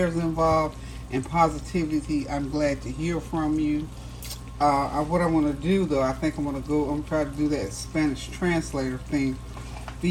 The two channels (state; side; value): identical; both; correlation 1.00